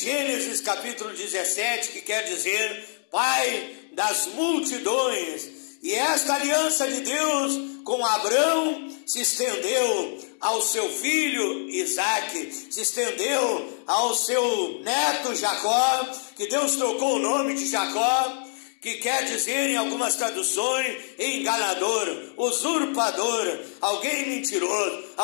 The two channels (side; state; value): right; silent; digital silence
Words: capítulo 17, que quer dizer pai das multidões. E esta aliança de Deus com Abrão se estendeu ao seu filho Isaque, se estendeu ao seu neto Jacó, que Deus trocou o nome de Jacó, que quer dizer em algumas traduções enganador, usurpador, alguém mentiroso,